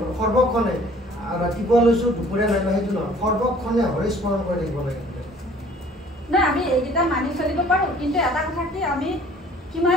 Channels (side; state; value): both; normal; correlation 0.53